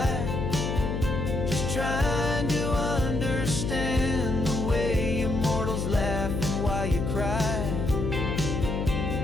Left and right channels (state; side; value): noise; left; hum, 2 dB below the sound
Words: just trying to understand the way immortals laugh and why you cry.